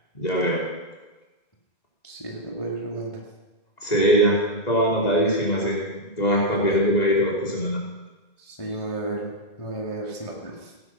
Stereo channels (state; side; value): late; right; 2.0 ms